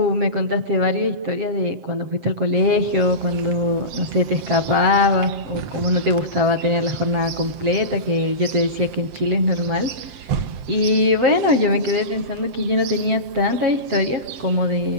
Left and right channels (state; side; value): late; left; 7.7 ms